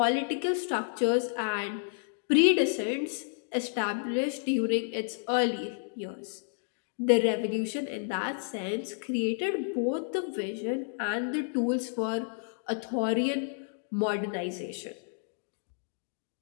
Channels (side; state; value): right; silent; digital silence